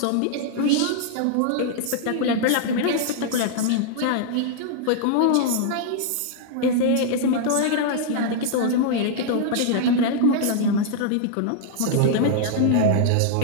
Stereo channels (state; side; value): different; both; correlation -0.01